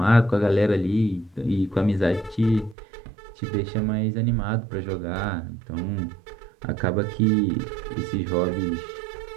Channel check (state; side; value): drops out; left; at 2.8 s